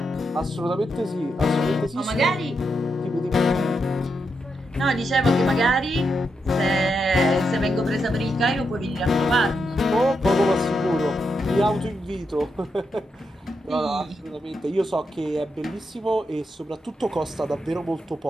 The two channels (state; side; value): normal; both; correlation 0.84